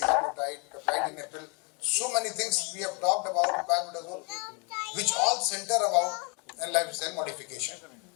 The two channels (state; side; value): quieter; right; 33.9 dB